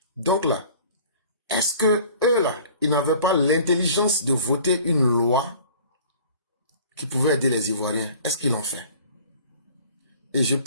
donc là, est-ce que eux là, ils n'avaient pas l'intelligence de voter une loi qui pouvait aider les Ivoiriens? Est-ce qu'ils l'ont fait? Et je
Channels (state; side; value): inverted; both; correlation -0.49